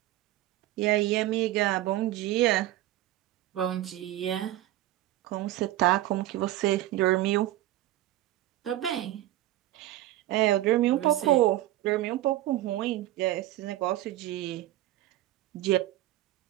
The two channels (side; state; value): left; quieter; 15.2 dB